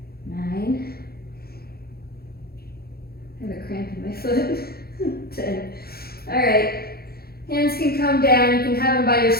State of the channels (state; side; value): late; right; 0.45 ms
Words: 9. I have a cramp in my foot. 10. All right. Hands can come down. You can have them by your